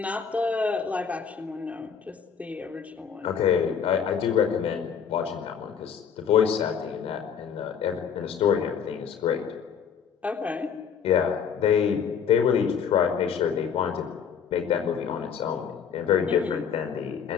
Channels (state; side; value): quieter; right; 7.3 dB